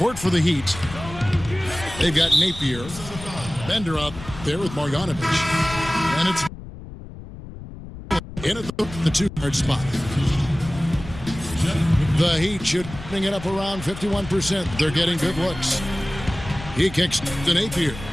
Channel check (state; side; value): noise; left; rumble, 13 dB below the sound